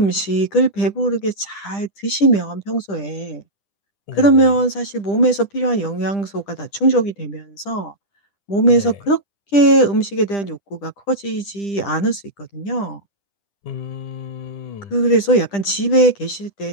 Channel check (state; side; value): late; right; 10 ms